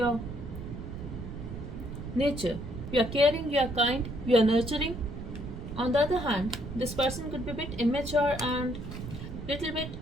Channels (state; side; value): noise; right; rumble, 9 dB below the sound